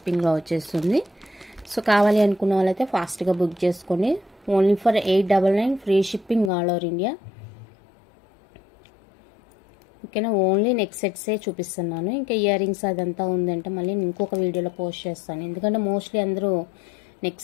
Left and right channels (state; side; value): drops out; right; at 6.5 s